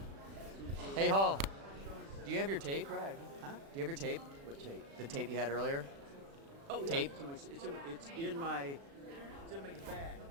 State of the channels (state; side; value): late; left; 36 ms